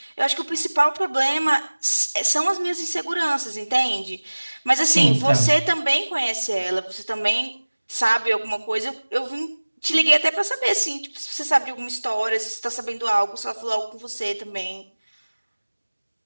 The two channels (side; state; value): both; inverted; correlation -1.00